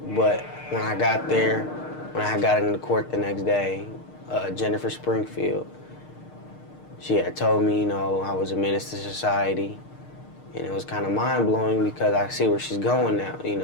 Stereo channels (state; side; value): late; right; 6.5 ms